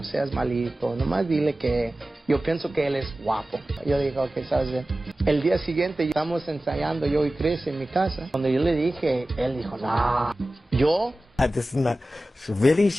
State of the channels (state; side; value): normal; both; correlation 0.96